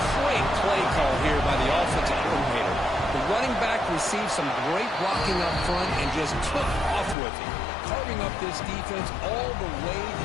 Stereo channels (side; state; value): right; drops out; at 7.2 s